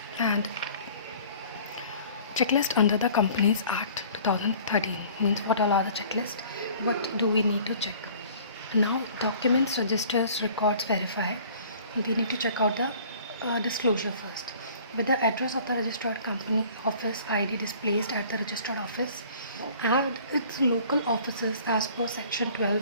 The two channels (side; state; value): both; inverted; correlation -0.50